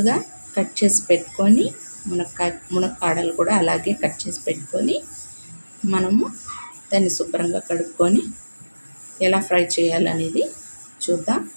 కట్ చేసి పెట్టుకొని మునక్కాడలు కూడా అలాగే కట్ చేసి పెట్టుకొని మనము దాన్ని శుభ్రంగా కడుక్కొని ఎలా ఫ్రై చేయాలనేది చూద్దాం.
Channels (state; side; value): inverted; both; correlation -1.00